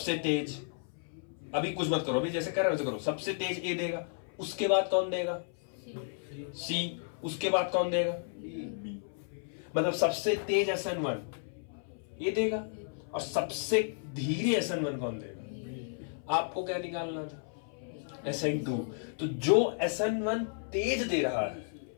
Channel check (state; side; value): silent; right; 55 dB below the other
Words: तेज, अभी कुछ मत करो, अभी जैसे कर रहे हो वैसे करो, सबसे तेज A देगा, उसके बाद कौन देगा C, उसके बाद कौन देगा B, मतलब सबसे तेज SN1 ये देगा, और सबसे धीरे SN1 कौन देगा। आपको क्या निकालना था SN2, तो जो SN1 तेज दे रहा है